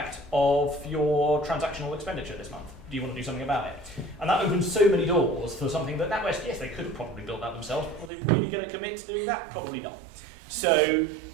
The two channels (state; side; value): drops out; left; at 8.1 s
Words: of your transactional expenditure this month. Do you want to do something about it? And that opens so many doors for something that NatWest, yes, they could have probably built that themselves, but are they really going to commit to doing that? Probably not. So,